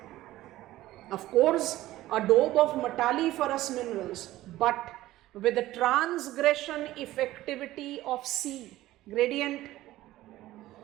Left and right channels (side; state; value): left; quieter; 15.8 dB